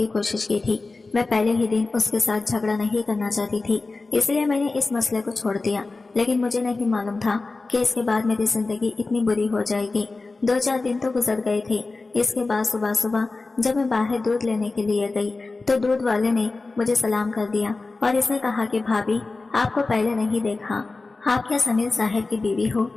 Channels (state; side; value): quieter; right; 3.6 dB